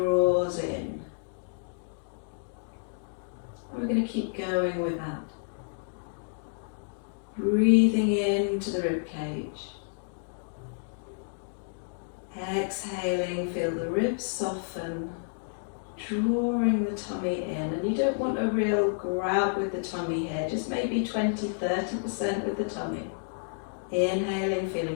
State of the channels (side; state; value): right; silent; digital silence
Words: in. And we're going to keep going with that. Breathing into the rib cage. Exhaling, feel the ribs soften, drawing the tummy in. And you don't want a real grab with the tummy here, just maybe 20-30% with the tummy. Inhaling,